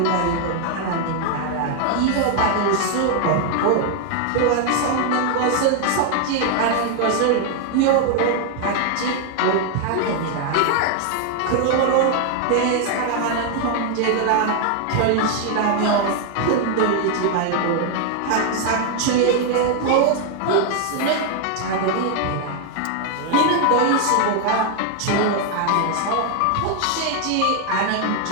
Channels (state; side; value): different; both; correlation 0.01